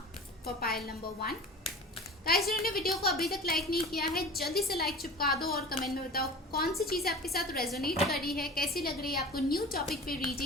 for pile number 1। Guys, जिन्होंने वीडियो को अभी तक लाइक नहीं किया है, जल्दी से लाइक चिपका दो और कमेंट में बताओ कौन सी चीज़ आपके साथ रेजोनेट कर रही है, कैसी लग रही है आपको न्यू टॉपिक पे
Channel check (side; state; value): both; normal; correlation 0.37